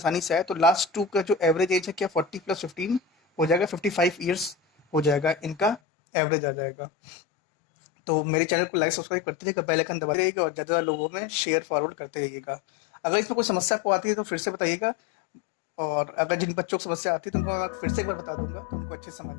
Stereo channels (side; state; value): right; drops out; at 5.8 s